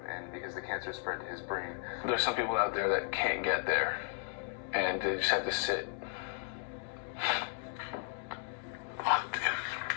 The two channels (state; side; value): silent; right; 54 dB below the other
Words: and because the cancer spread to his brain. There's some people out there that can't get there and they just have to sit. fuck, dude.